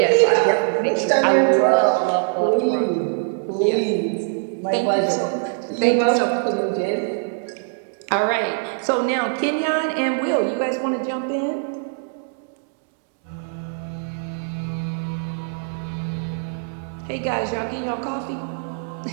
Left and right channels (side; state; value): left; silent; digital silence